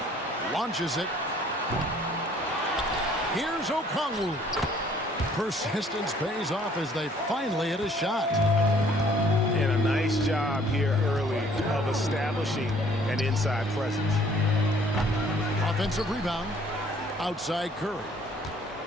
Launches it. Here's Okongwu. Persistence pays off as they finally hit a shot. And a nice job here early of establishing an inside presence. Offensive rebound. Outside Curry.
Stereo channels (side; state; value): both; normal; correlation 0.58